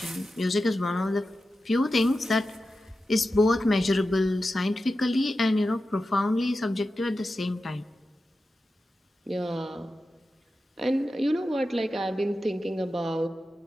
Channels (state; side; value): normal; both; correlation 0.92